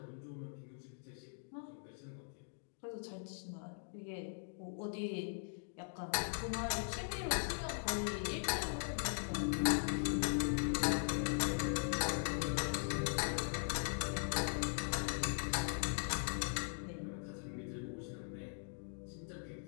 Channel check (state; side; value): silent; right; digital silence